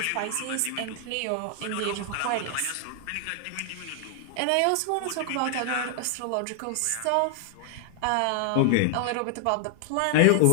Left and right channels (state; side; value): different; both; correlation 0.00